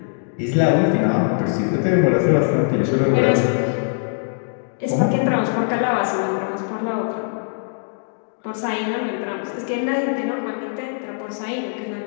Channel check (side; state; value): right; silent; 65 dB below the other